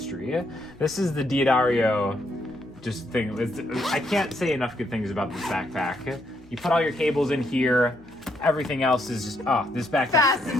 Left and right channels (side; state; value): left; noise; hum, 27 dB below the sound